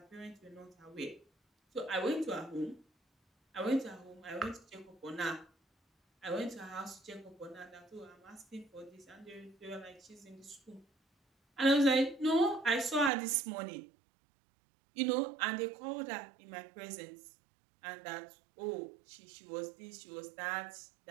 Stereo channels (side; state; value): left; drops out; at 13.1 s